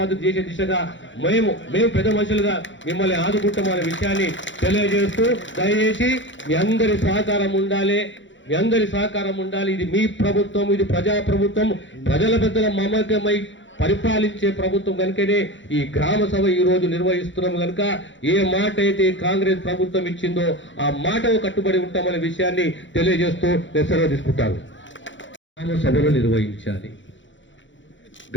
చేసే దిశగా మేము పెద్ద మనుషులుగా మిమ్మల్ని ఆదుకుంటామనే విషయాన్ని తెలియజేస్తూ, దయచేసి మీ అందరి సహకారం ఉండాలి. ఇది మీ ప్రభుత్వం, ఇది ప్రజా ప్రభుత్వం, ప్రజల పెద్దల మమకమై పరిపాలించే ప్రభుత్వం. కనుకనే ఈ గ్రామ సభ ఈ రోజు నిర్వహిస్తున్నాం. కనుక ఏ మాట అయితే కాంగ్రెస్ ప్రభుత్వం ఇచ్చిందో ఆ మాటకు కట్టుబడి ఉంటామనే విషయాన్ని తెలియజేస్తూ నేను సెలవు తీసుకుంటాను. గ్రామ సభలు నిర్వహించాలి.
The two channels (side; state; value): right; late; 0.54 ms